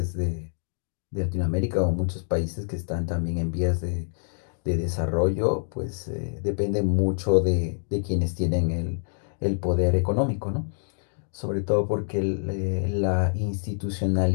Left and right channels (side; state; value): right; silent; digital silence